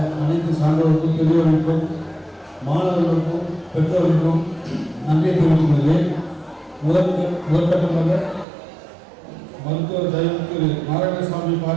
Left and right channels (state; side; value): drops out; left; at 8.5 s